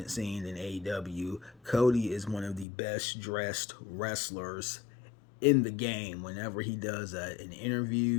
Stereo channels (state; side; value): drops out; right; at 2.7 s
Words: scene in AEW. Cody is one of the best dressed wrestlers in the game. Whenever he does an